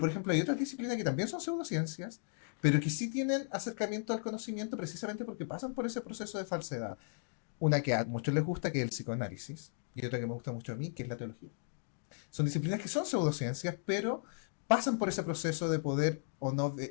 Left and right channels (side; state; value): right; silent; digital silence